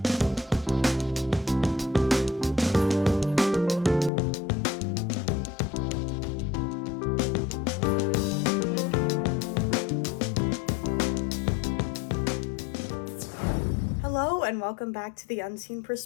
Hello, and welcome back to The Unseen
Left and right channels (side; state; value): right; drops out; at 4.1 s